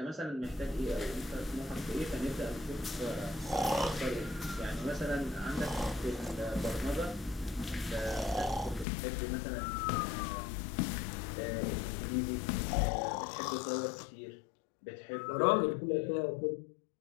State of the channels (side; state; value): right; drops out; at 8.8 s